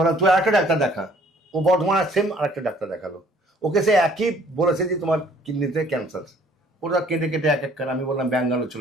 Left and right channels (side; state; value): both; normal; correlation 0.58